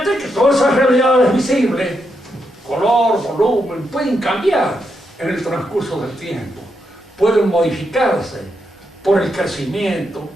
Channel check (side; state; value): both; normal; correlation 0.82